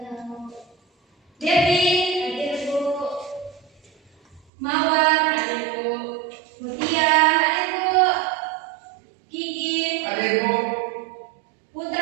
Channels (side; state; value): left; drops out; at 4.4 s